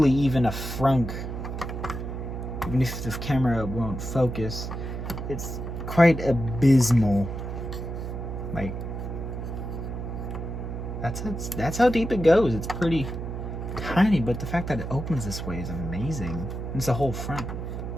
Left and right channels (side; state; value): right; noise; hum, 6 dB below the sound